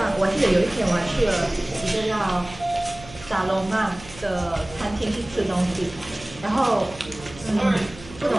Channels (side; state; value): right; noise; hum, 18 dB below the sound